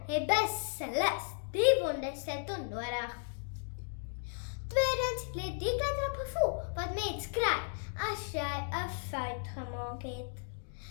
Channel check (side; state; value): right; silent; digital silence